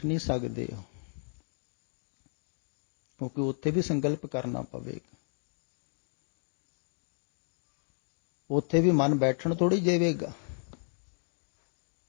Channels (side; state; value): right; silent; 56 dB below the other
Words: ਨਹੀਂ ਸਕਦੇ ਹੋ, ਕਿਉਂਕਿ ਉੱਥੇ ਵੀ ਸੰਕਲਪ ਕਰਨਾ ਪਵੇਗਾ। ਉੱਥੇ ਵੀ ਮਨ ਬੈਠਣ ਥੋੜ੍ਹੀ ਦੇਵੇਗਾ।